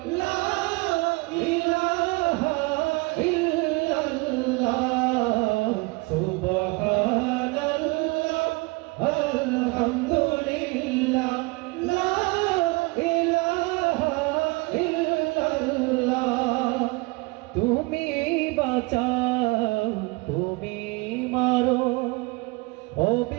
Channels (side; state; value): left; quieter; 26.0 dB